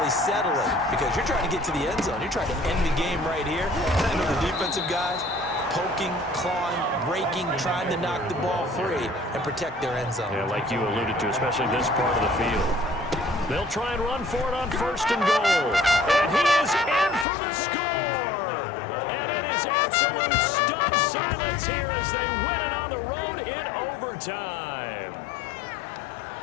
settle it because you're trying to get to the end zone. You're trying to end the game right here. And I know the defensive guys poking, clawing, raking, trying to knock the ball free and protect their end zone. Yeah, like you alluded to, especially this part of the field. They'll try and run for it on first and goal. And he is in for the score. And it is absolute stunned silence here as they win it on the road in overtime.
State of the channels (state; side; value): drops out; right; at 17.2 s